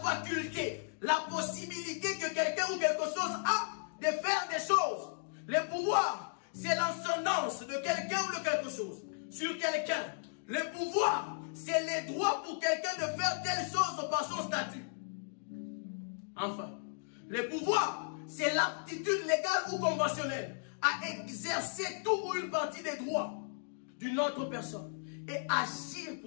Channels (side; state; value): right; silent; digital silence